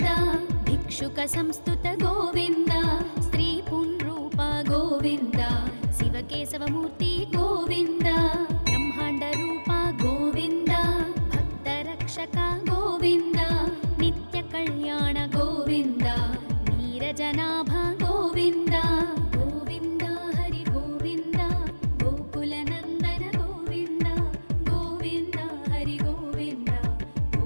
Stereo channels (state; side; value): inverted; both; correlation -1.00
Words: भिक्षुक संस्तुत गोविन्द स्त्री पुंरूप गोविन्द शिवकेशवमूर्ति गोविन्द ब्रह्माण्ड रूप गोविन्द भक्तरक्षक गोविन्द नित्य कल्याण गोविन्द नीरजनाभ गोविन्द गोविन्द हरि गोविन्द गोकुलनन्दन गोविन्द गोविन्द हरि गोविन्द